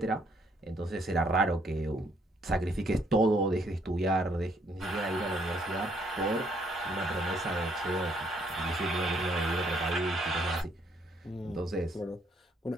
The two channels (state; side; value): normal; both; correlation 0.68